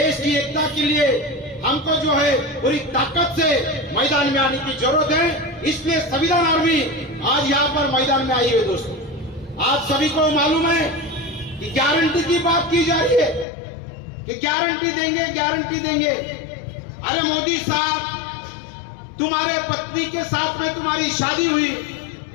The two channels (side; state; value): right; drops out; at 13.5 s